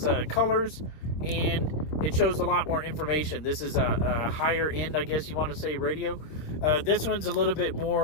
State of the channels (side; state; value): right; late; 26 ms